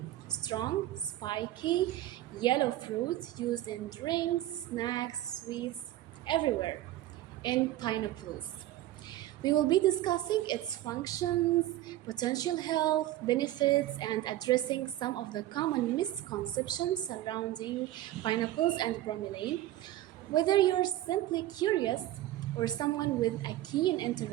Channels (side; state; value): left; quieter; 14.4 dB